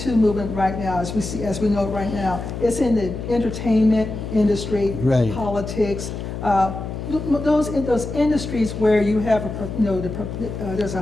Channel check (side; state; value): left; noise; hum, 7 dB below the sound